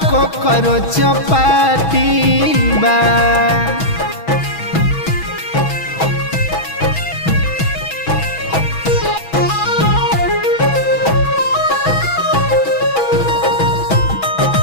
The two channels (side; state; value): right; late; 6.1 ms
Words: को करो चपाती बा।